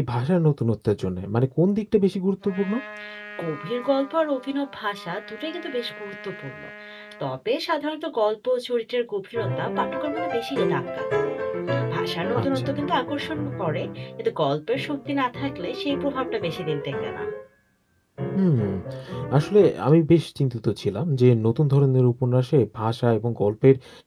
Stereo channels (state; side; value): identical; both; correlation 1.00